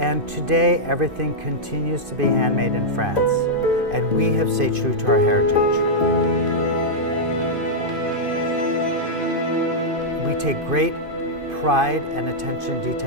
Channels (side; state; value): left; late; 2.5 ms